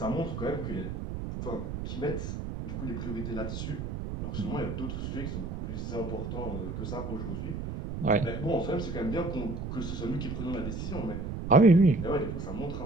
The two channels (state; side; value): noise; right; rumble, 5 dB below the sound